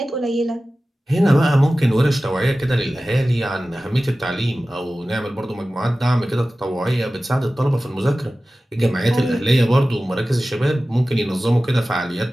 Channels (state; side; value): normal; both; correlation 0.96